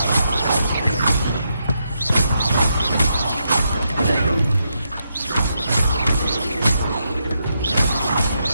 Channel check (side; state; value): both; inverted; correlation -0.82